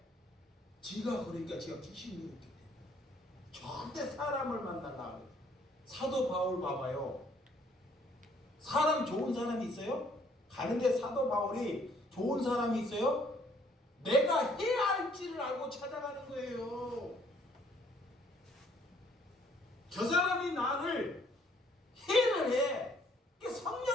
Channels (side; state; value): both; normal; correlation 0.63